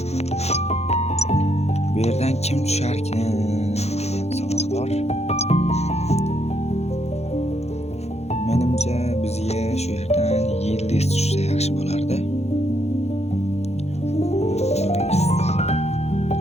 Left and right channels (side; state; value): right; late; 0.31 ms